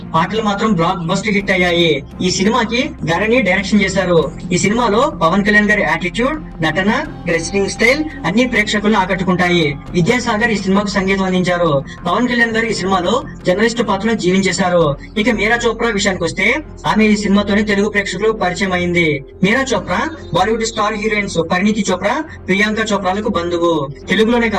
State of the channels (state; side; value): identical; both; correlation 1.00